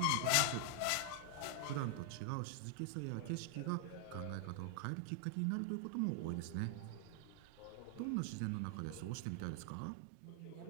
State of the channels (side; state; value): both; different; correlation 0.00